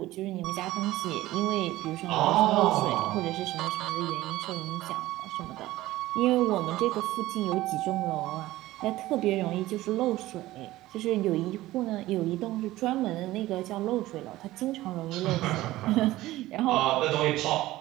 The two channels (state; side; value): quieter; left; 16.8 dB